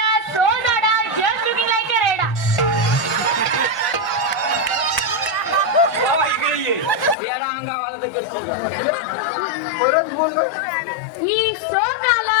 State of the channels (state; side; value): drops out; right; at 7.2 s